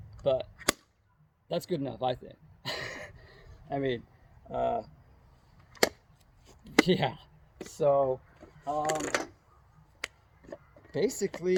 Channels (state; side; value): identical; both; correlation 1.00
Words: But that's good enough, I think. I mean, yeah. So,